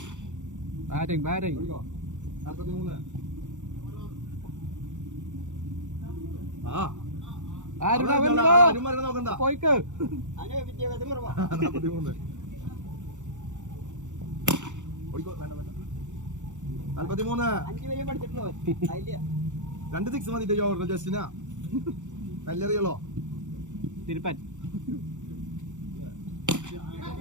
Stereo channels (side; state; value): left; late; 0.85 ms